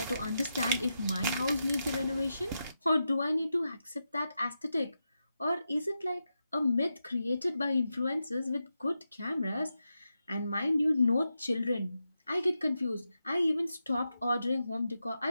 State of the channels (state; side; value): inverted; both; correlation -0.88